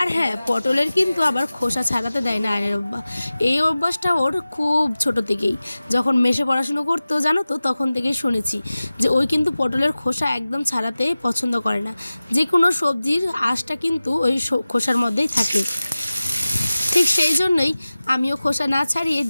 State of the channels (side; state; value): both; inverted; correlation -0.97